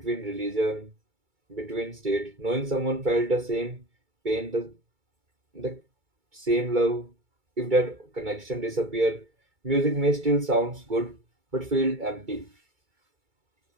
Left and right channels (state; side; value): late; left; 2.3 ms